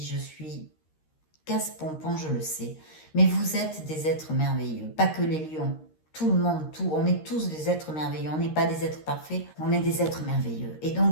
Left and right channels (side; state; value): right; late; 13 ms